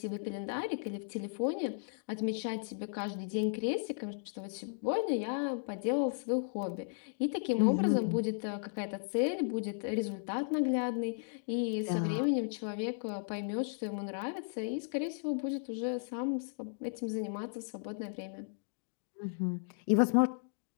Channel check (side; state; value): right; silent; digital silence